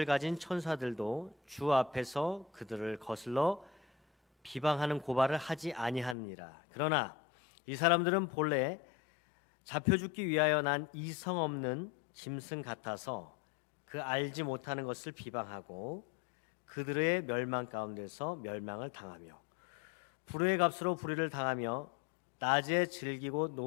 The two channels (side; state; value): right; drops out; at 6.2 s